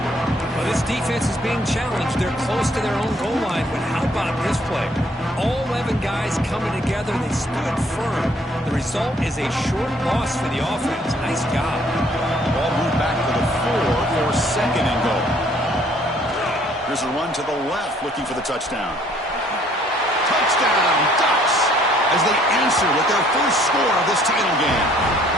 Well, this defense is being challenged. They're close to their own goal line, but how about this play? All 11 guys coming together. They stood firm. The result is a short loss for the offense. Nice job. Ball moved back to the 4 for second and goal. Here's a run to the left, looking for the touchdown. Touchdown, Ducks, as they answer with their first score of this title game.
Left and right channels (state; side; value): normal; both; correlation 0.62